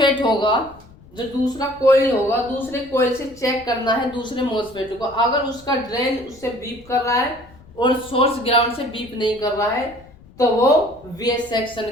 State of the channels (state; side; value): noise; left; rumble, 24 dB below the sound